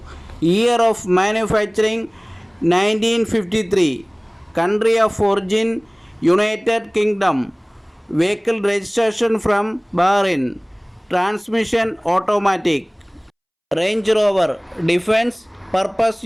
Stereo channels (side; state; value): both; identical; correlation 1.00